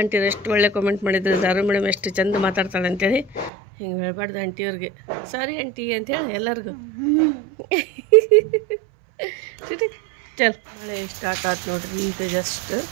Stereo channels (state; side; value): drops out; left; at 3.5 s